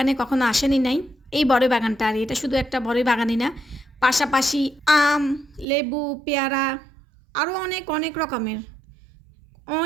কখনো আসেনি নাই। এই বড়ই বাগানটা, আর এটা শুধু একটা বড়ই বাগানই না, পাশাপাশি আম, লেবু, পেয়ারা, আরও অনেক অনেক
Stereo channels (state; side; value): drops out; left; at 5.7 s